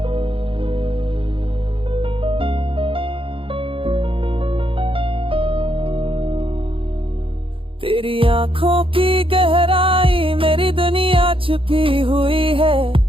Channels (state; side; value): late; left; 0.26 ms